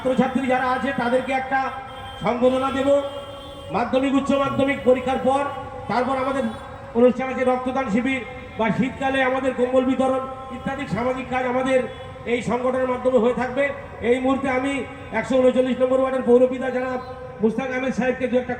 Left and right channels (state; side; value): identical; both; correlation 1.00